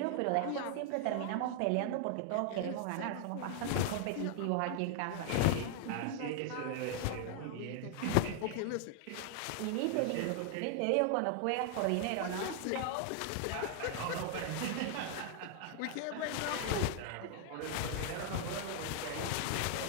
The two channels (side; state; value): both; different; correlation 0.00